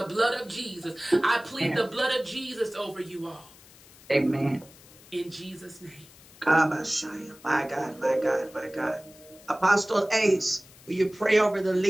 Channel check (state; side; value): noise; left; hiss, 23 dB below the sound